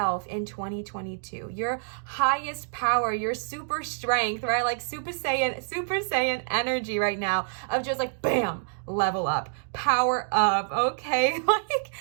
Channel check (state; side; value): silent; left; digital silence